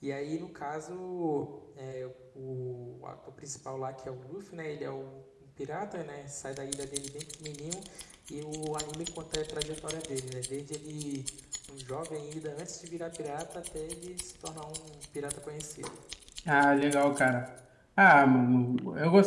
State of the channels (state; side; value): identical; both; correlation 1.00